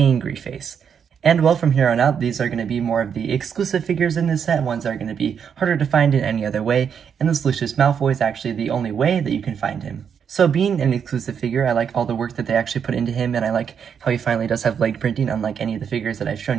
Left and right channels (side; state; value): left; quieter; 7.4 dB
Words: face. And well, from here on out, these are going to be more of the exclusive figures in this set, ones that are going to be harder to find in any other way, and this Lucius Malfoy is actually the only way that you can find him. So being an exclusive figure, I like all the work that they actually put into him, and I like how he finally does have leg printing, unlike any of the figures that I've